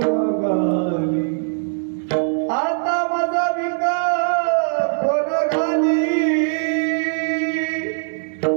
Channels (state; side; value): silent; left; digital silence